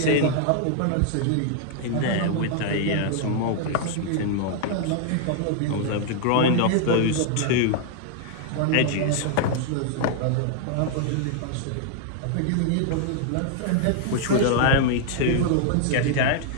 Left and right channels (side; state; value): both; different; correlation 0.00